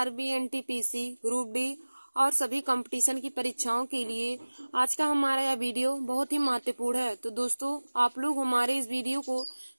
NTPC, group D और सभी कंपटीशन की परीक्षाओं के लिए आज का हमारा यह वीडियो बहुत ही महत्वपूर्ण है। तो दोस्तों, आप लोग हमारे इस वीडियो को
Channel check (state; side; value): inverted; both; correlation -1.00